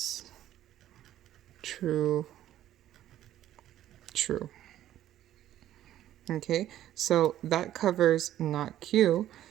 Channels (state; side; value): quieter; left; 12.5 dB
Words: true, true. Okay, so that covers not Q.